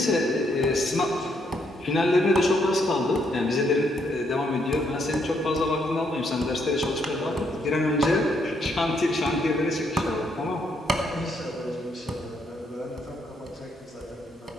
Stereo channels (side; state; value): both; normal; correlation 0.74